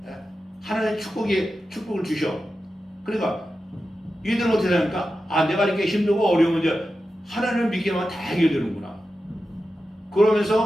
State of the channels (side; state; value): both; normal; correlation 0.91